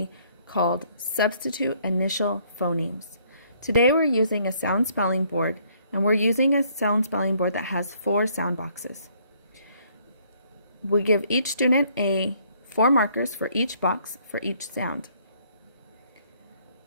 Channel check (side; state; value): both; inverted; correlation -0.65